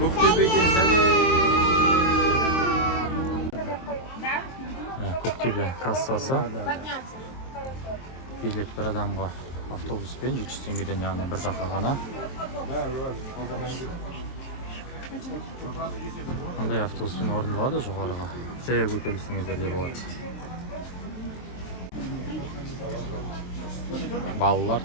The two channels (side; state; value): right; late; 23 ms